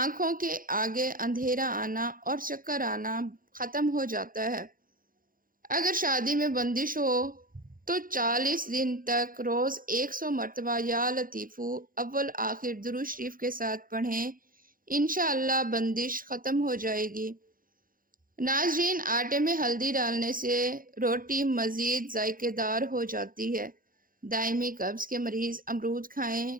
کے آگے اندھیرا آنا اور چکر آنا ختم ہو جاتا ہے۔ اگر شادی میں بندش ہو تو 40 دن تک روز 100 مرتبہ یا لطیفو اول آخر درود شریف کے ساتھ پڑھیں، انشاءاللہ بندش ختم ہو جائے گی۔ ناظرین، آٹے میں ہلدی ڈالنے سے روٹی مزید ذائقے دار ہو جاتی ہے۔ دائمی قبض کے مریض امرود کھائیں،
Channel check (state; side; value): late; left; 0.40 ms